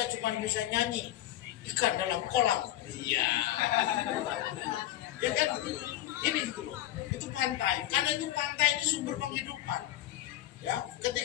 cuma bisa nyanyi ikan dalam kolam, iya, ya kan? Ini gitu loh, itu pantai, karena itu pantai ini sumber penghidupan. Ya,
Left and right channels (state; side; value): quieter; right; 13.9 dB